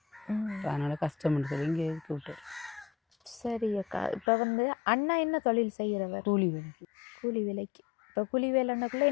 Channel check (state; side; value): drops out; right; at 4.2 s